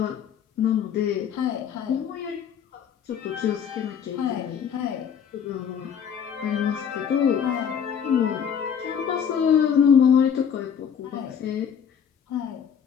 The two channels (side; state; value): right; quieter; 7.8 dB